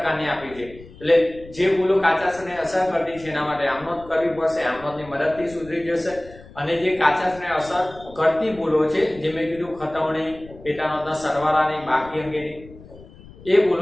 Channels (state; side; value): noise; left; rumble, 20 dB below the sound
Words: આપી છે। એટલે જે ભૂલો કાચા સરવાળે અસર કરતી છે એના માટે આમનોંધ કરવી પડશે, આમનોંધની મદદથી સુધરી જશે। અને જે કાચા સરવાળે અસર કરતી ભૂલો છે જે મેં કીધું ખતવણી, પેટા નોંધના સરવાળાની બાકી અંગેની એ